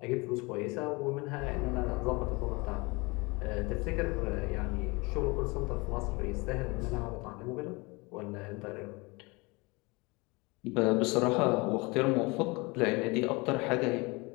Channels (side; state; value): right; quieter; 26.2 dB